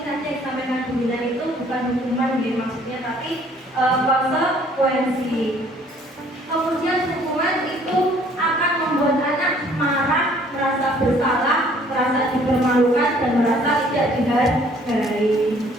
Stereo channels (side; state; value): both; normal; correlation 0.59